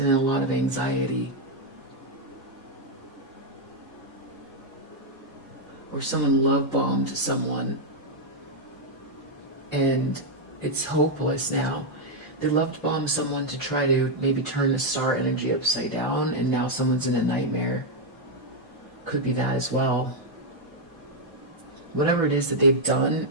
a lot of anxiety. Or someone love bombed someone and it's hopeless now. They loved bomb someone to try to maybe turn the star energy upside down, and now someone's in a nightmare. Could be that as well. Whatever it is that they've done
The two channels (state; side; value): normal; both; correlation -0.01